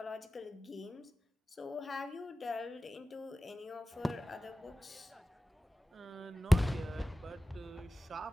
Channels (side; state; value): both; normal; correlation 0.96